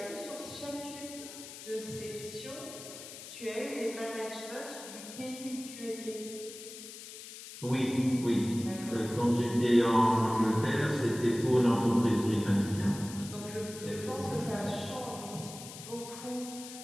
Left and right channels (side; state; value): left; noise; hiss, 13 dB below the sound